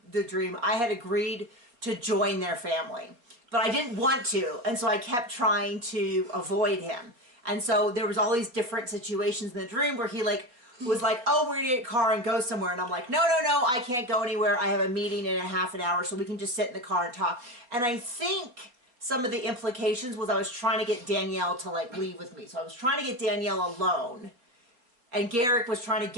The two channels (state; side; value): late; left; 4.2 ms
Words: dream, I had agreed to join their family. But I didn't want to, and so I kept trying to avoid him. And so there was all these different situations in the dream where he was like, oh, we're gonna get a car and go somewhere. And I'm like, no, I can't go anywhere. I have a meeting in a half an hour, so we can just sit in the car and talk. And I think some of the implications was I was trying to get Danielle to leave with me. So I was trying to get Danielle alone. And Garrick was trying to